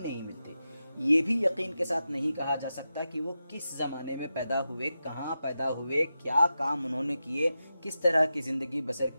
نہیں ملتے۔ یہ بھی یقین کے ساتھ نہیں کہا جا سکتا کہ وہ کس زمانے میں پیدا ہوئے، کہاں پیدا ہوئے، کیا کام انہوں نے کیے، کس طرح کی زندگی بسر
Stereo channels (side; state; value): both; inverted; correlation -0.91